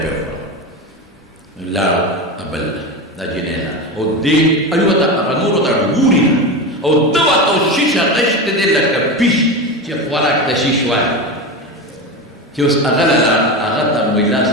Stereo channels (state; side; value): normal; both; correlation 0.21